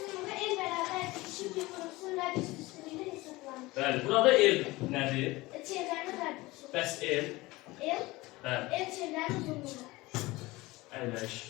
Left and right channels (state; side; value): quieter; right; 20.7 dB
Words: el bərabər bitişik bir kurusun radius üstünlüğüyle hesaplanır. Bəli, burada el nədir? Çevrenin radiusu. Bəs el? El, Bəli, el çevrenin uzunluğu. əyləş.